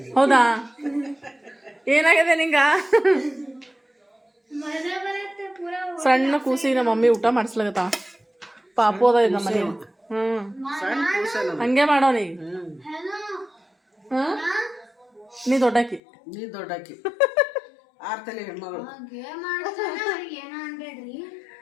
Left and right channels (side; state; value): right; drops out; at 16.0 s